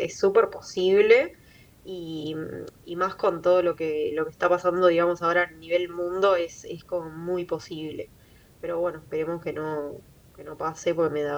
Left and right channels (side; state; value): both; identical; correlation 1.00